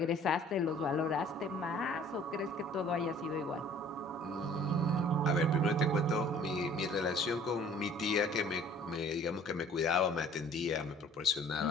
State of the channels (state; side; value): normal; both; correlation 0.53